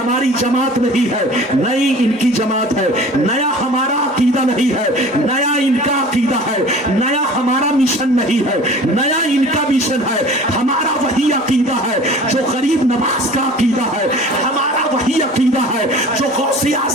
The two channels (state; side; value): normal; both; correlation 0.43